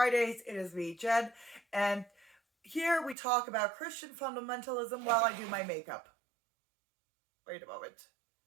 It is me, Jen, and here we talk about Christian fundamentalism while I do my makeup. Wait a moment.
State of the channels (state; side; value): drops out; left; at 3.2 s